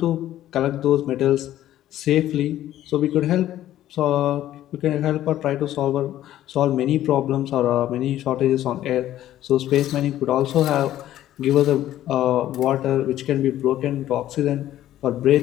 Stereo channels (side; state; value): right; quieter; 13.0 dB